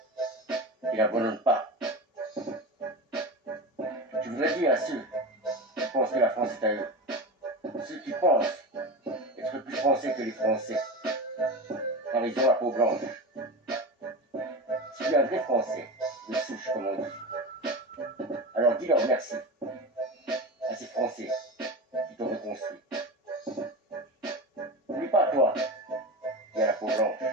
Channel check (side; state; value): both; normal; correlation 0.24